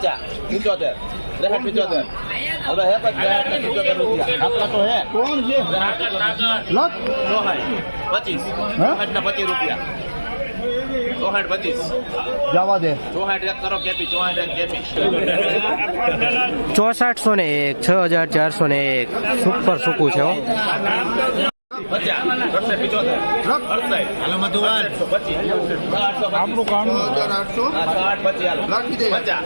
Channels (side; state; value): both; inverted; correlation -1.00